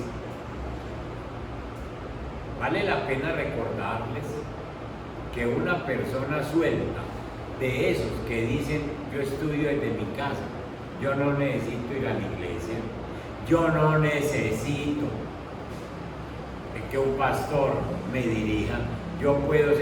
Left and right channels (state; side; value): identical; both; correlation 1.00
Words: Vale la pena recordarles que una persona suelta, de esos que dicen: yo estudio desde mi casa, yo no necesito ir a la iglesia, yo no necesito que un pastor me dirija, yo puedo